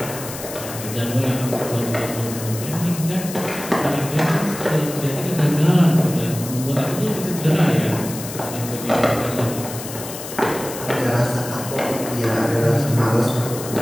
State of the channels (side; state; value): left; noise; hiss, 10 dB below the sound